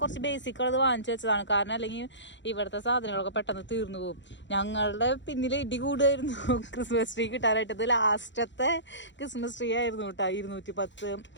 കുറച്ച് ബേസിക്കുള്ളത് വാങ്ങിച്ചു വെച്ചതാണ്. കാരണം അല്ലെങ്കിൽ ഇവിടുത്തെ സാധനങ്ങളൊക്കെ പെട്ടെന്ന് തീർന്നു പോകും. ഞങ്ങളുടെ പിന്നിൽ ഇടി കൂടുമായിരുന്നു ക്രിസ്മസ് ട്രീ കിട്ടാനായിട്ട്. ഇത് ലാസ്റ്റത്തെ ക്രിസ്മസ് ട്രീ ആയിരുന്നു കേട്ടോ,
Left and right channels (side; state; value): right; late; 0.53 ms